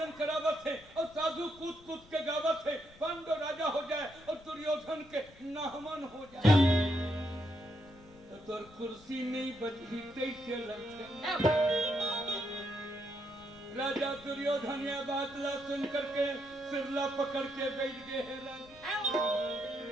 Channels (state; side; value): noise; left; rumble, 23 dB below the sound